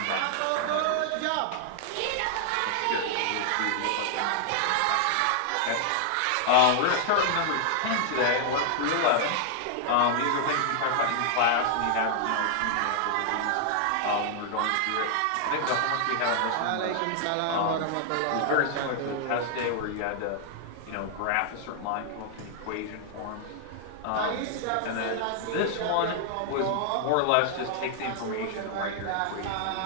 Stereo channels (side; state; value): both; different; correlation 0.00